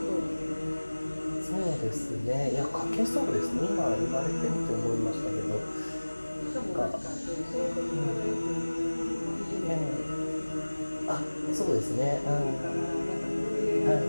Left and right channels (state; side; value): inverted; both; correlation -1.00